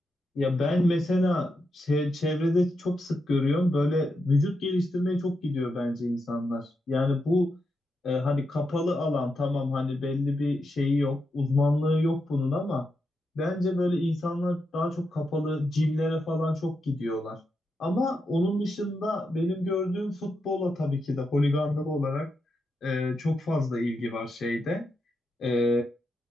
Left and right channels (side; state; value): both; normal; correlation 0.85